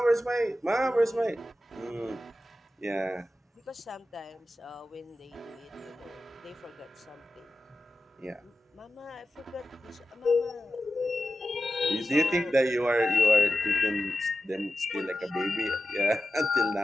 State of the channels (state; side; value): normal; both; correlation 0.92